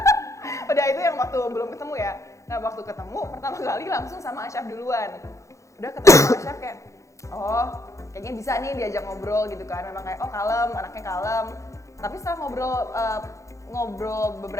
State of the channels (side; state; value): right; late; 0.15 ms